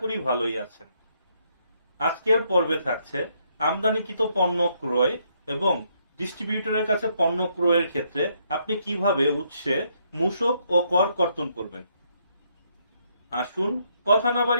করি ভালোই আছেন। আজকের পর্বে থাকছে আমদানিকৃত পণ্য ক্রয় এবং ডিস্ট্রিবিউটরের কাছে পণ্য ক্রয়ের ক্ষেত্রে আপনি কিভাবে উৎসে মূসক ও কর কর্তন করবেন। আসুন কথা না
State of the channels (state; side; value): inverted; both; correlation -0.73